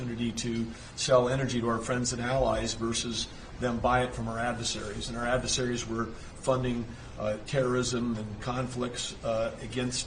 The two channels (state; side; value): identical; both; correlation 1.00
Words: to sell energy to our friends and allies versus them buy it from our adversaries. And our adversaries were funding terrorism and conflicts against